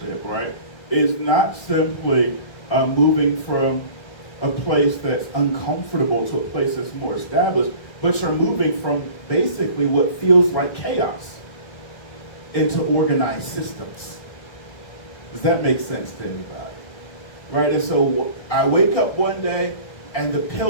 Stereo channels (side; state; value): right; late; 1.6 ms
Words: right, is not simply moving from a place that's uncomfortable to a place that's more established, but you're moving from basically what feels like chaos into organized systems. Does that make sense to anybody? Right, and so I wake up one day and the